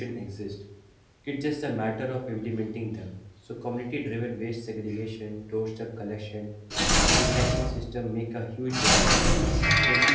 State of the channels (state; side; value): identical; both; correlation 1.00